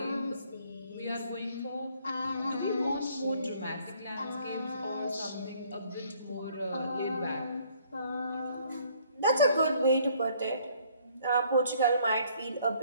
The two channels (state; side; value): inverted; both; correlation -0.62